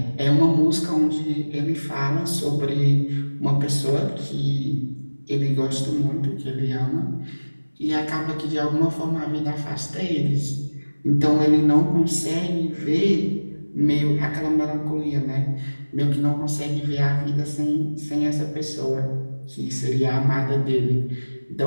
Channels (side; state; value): both; inverted; correlation -1.00